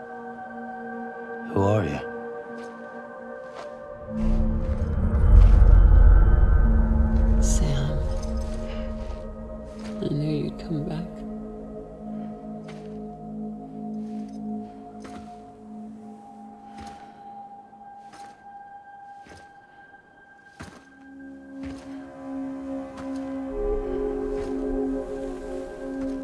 Who are you? Sam. I knew you'd come back.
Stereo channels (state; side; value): identical; both; correlation 1.00